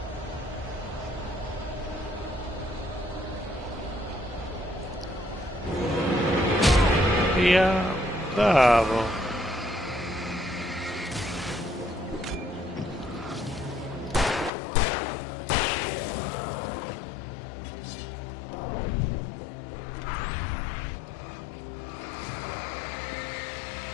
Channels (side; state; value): right; drops out; at 14.5 s